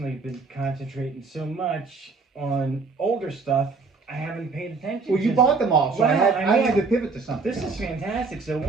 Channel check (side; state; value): left; quieter; 4.3 dB